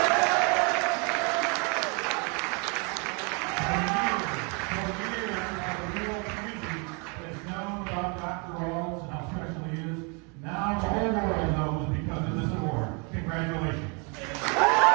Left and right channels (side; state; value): left; quieter; 33.4 dB